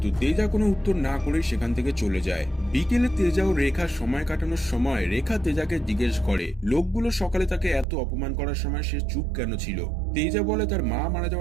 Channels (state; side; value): drops out; left; at 7.9 s